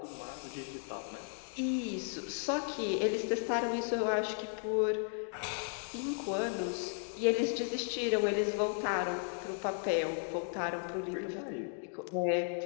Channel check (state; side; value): silent; right; 54 dB below the other